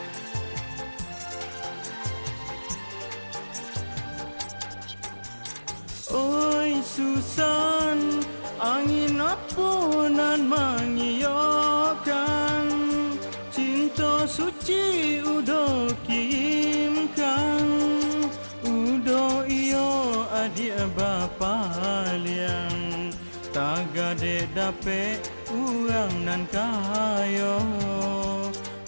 Oi Susan, angin apa nan mengiyakan, cinta suci udo kirimkan, udo iyo adik bapa liang, tagade dape urang nan kayo,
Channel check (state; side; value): inverted; both; correlation -1.00